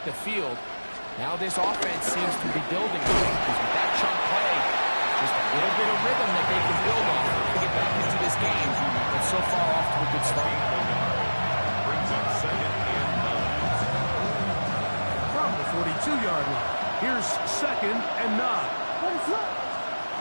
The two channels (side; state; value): both; inverted; correlation -1.00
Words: the field. Now this offense seems to be building because with that chunk play, just a little bit of rhythm that they can build off to get back into this game. But so far off to a good start. Brings up second and 9. From the 42-yard line, here's second and 9.